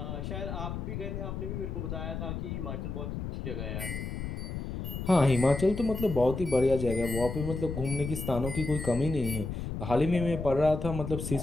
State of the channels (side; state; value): left; noise; rumble, 5 dB below the sound